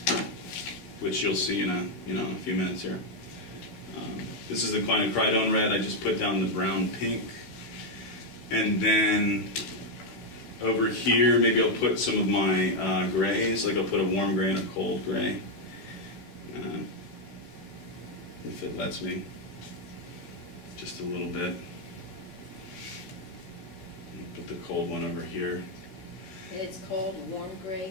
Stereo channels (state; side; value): late; right; 15 ms